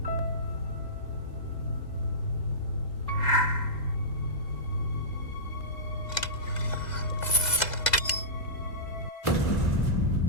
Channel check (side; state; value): right; late; 2.0 ms